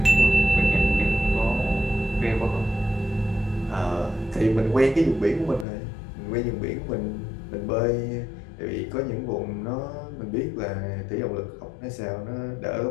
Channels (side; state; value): right; drops out; at 5.7 s